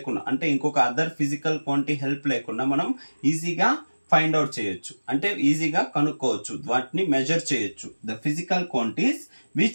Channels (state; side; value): inverted; both; correlation -1.00